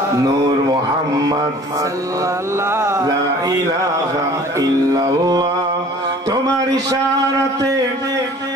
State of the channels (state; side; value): normal; both; correlation 0.49